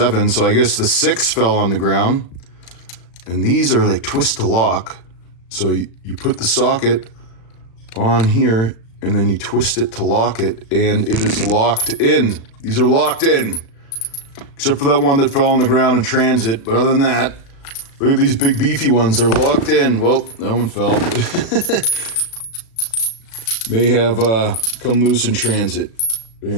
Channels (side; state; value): right; late; 36 ms